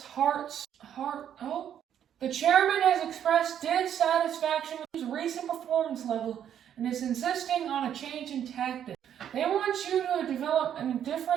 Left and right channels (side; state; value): left; quieter; 9.6 dB